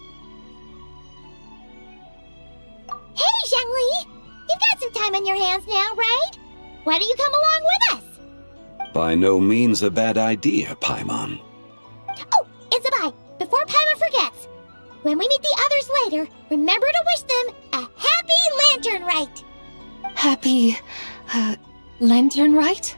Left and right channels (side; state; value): both; inverted; correlation -1.00